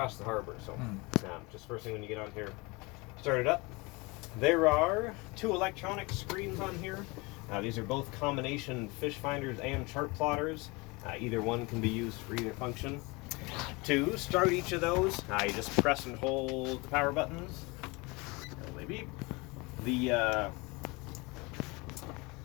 the harbor. So just first thing when you get on here, start it up. There are 2 electronic screens on here. These are both combination fish finders and chart plotters. Either one can be used for either function. To start each of those, you just press and hold the power buttons. They beep.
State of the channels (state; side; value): quieter; right; 25.8 dB